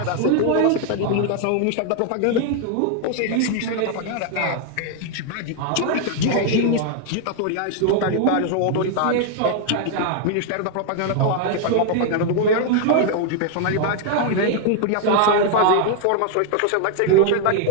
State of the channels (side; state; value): both; different; correlation 0.00